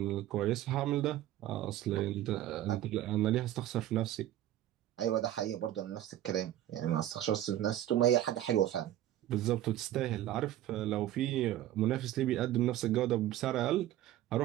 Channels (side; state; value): left; quieter; 13.1 dB